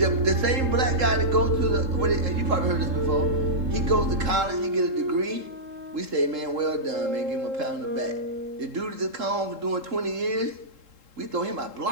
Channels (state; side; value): late; left; 3.7 ms